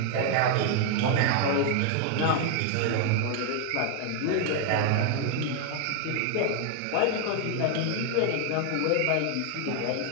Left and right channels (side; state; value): both; different; correlation 0.00